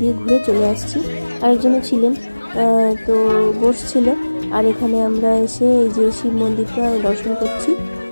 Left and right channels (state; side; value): inverted; both; correlation -1.00